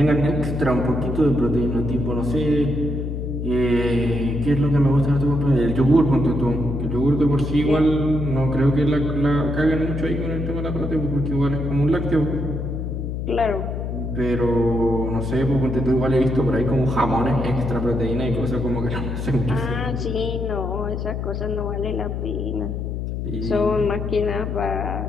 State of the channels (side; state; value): left; noise; hum, 4 dB below the sound